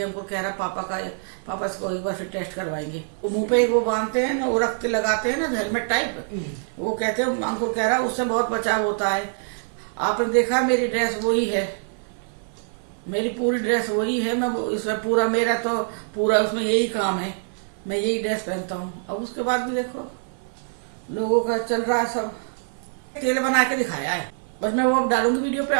हमको कह रहा पापा इसको एक बार फिर टेस्ट करवाएंगे। वो मुंह पे एक वो बांधते हैं ना, वो रखते लगाते हैं ना हेलमेट टाइप, वो कहते हैं, अंकुर कह रहा उससे बहुत बचाव होता है। आपने देखा मेरी ड्रेस वही है, मेरी पूरी ड्रेस वही है, मैं इसमें पूरा मेरा तो पूरा उसमें यही काम है, मैं यही ड्रेस पहनता हूँ। अब उसके बाद भी देखो लोगों का चल रहा है, सब तेल बना के दिखाया है, बस मैं वो डालूंगी वीडियो पे,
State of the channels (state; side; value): silent; left; 57 dB below the other